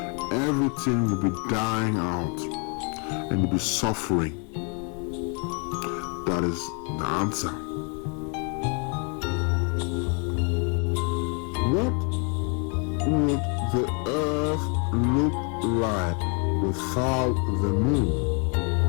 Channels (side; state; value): right; quieter; 37.5 dB